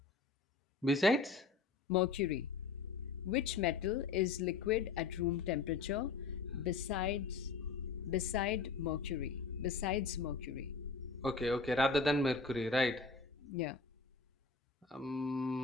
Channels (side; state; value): right; quieter; 4.4 dB